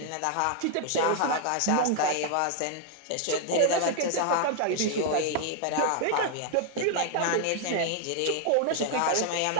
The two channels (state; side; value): different; both; correlation 0.00